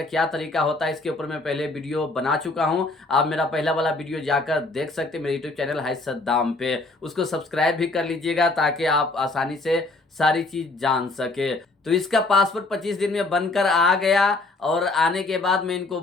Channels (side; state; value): right; quieter; 3.2 dB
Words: क्या तरीका होता है इसके ऊपर मैं पहले वीडियो बना चुका हूं। आप मेरा पहला वाला वीडियो जाकर देख सकते हैं मेरे यूट्यूब चैनल हाय सद्दाम पे। उसको सब्सक्राइब भी कर लीजिएगा ताकि आप आसानी से सारी चीज़ जान सके। तो इसका पासपोर्ट 25 दिन में बनकर आ गया और आने के बाद मैं इनको